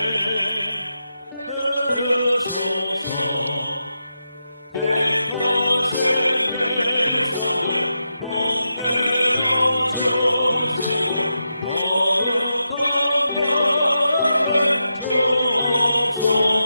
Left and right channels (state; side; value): inverted; both; correlation -0.87